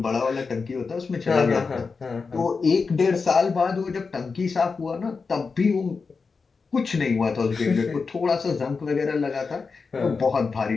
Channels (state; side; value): quieter; right; 4.8 dB